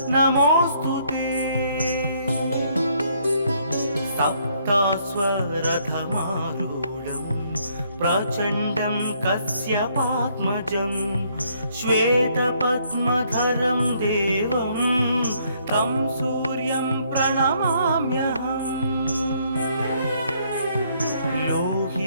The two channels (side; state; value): both; inverted; correlation -0.68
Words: नमोस्तुते सप्तास्वरथमारूढं प्रचण्डं कश्यपात्मजं श्वेतपद्मधरं देवं तं सूर्यं प्रणमाम्यहम्